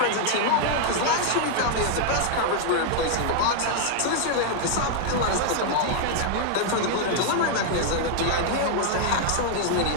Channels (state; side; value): different; both; correlation 0.00